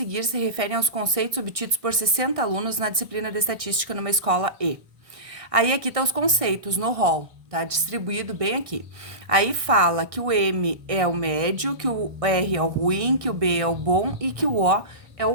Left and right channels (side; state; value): left; late; 1.6 ms